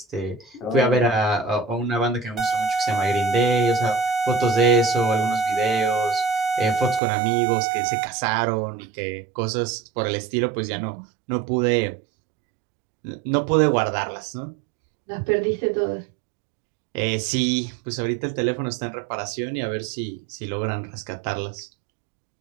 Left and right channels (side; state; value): left; drops out; at 7.0 s